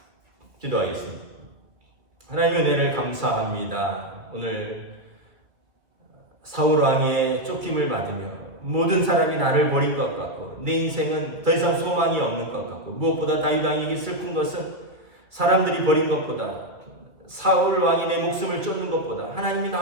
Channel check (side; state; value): left; late; 2.2 ms